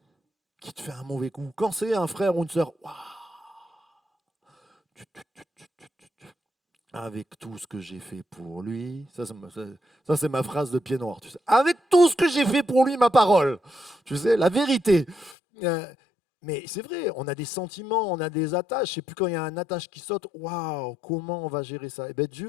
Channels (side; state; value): right; drops out; at 15.4 s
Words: qui te fait un mauvais coup, quand c'est un frère ou une sœur, waouh, avec tout ce que j'ai fait pour lui, ça, c'est ma phrase de pied noir, tu sais. Avec tout ce que j'ai fait pour lui, ma parole, tu sais, la vérité. Euh, mais c'est vrai, on a des sentiments, on a des attaches. Je sais plus quand il y a un attache qui saute, waouh, comment on va gérer ça? Eh bien,